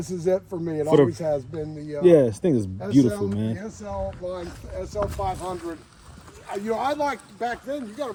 is it for me. It always has been the. Yeah, this thing is beautiful, man. The SL line, SL500. You know, I liked back then. You got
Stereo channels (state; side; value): identical; both; correlation 1.00